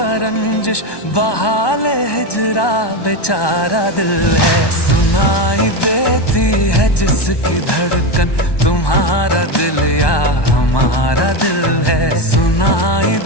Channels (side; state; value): right; late; 1.2 ms